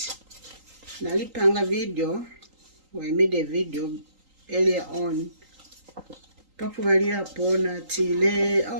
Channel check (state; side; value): late; left; 3.8 ms